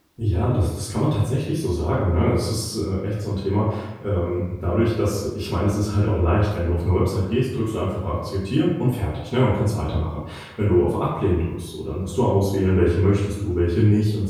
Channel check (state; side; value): identical; both; correlation 1.00